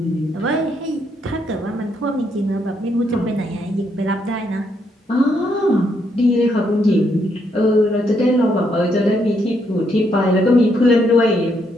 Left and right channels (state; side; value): normal; both; correlation 0.75